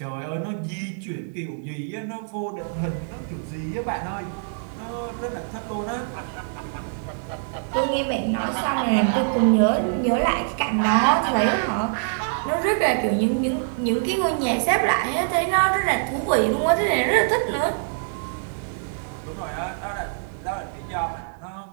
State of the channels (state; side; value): silent; left; digital silence